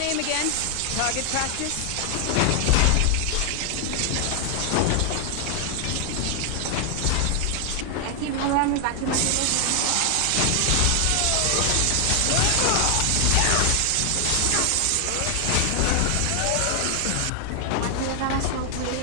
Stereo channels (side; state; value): both; different; correlation 0.00